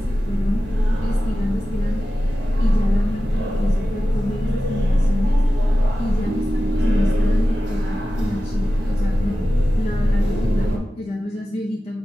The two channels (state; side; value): normal; both; correlation 0.94